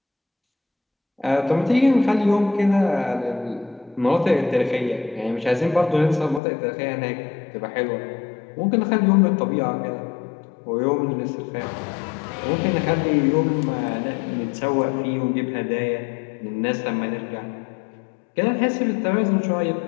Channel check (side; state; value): right; drops out; at 6.4 s